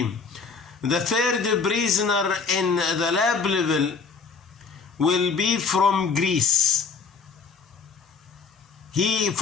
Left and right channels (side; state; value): right; quieter; 5.1 dB